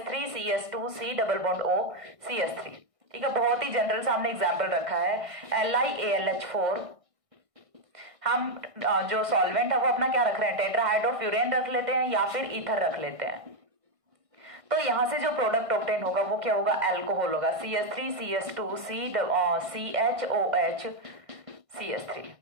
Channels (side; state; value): left; late; 1.6 ms